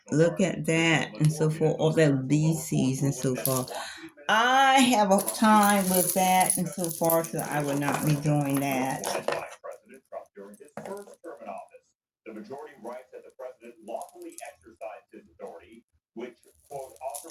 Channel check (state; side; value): identical; both; correlation 1.00